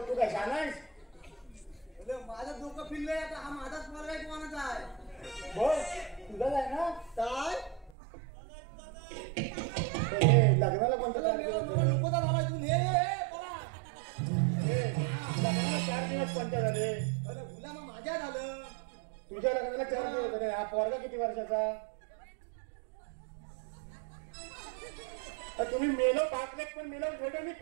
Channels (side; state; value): left; drops out; at 8.0 s